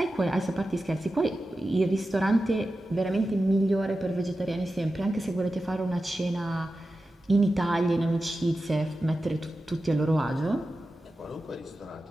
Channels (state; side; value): normal; both; correlation 0.93